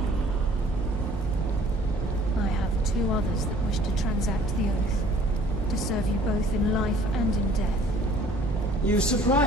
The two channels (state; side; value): normal; both; correlation 0.54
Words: I have two others that wish to transact the oath, to serve you both in life and in death. You